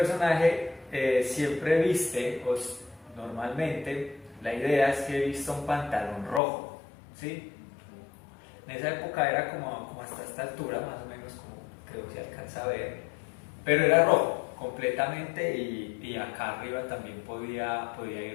siempre viste, pues, normalmente la idea es que vista un pantalón rojo, ¿sí? En esa época era como hasta esta altura, más o menos, como creo que se alcanza a ver, pero era rojo completamente, y acá arriba también podía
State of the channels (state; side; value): drops out; right; at 6.4 s